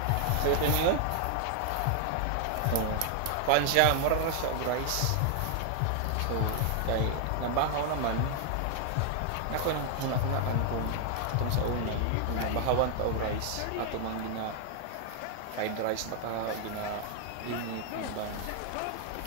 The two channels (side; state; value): both; different; correlation 0.00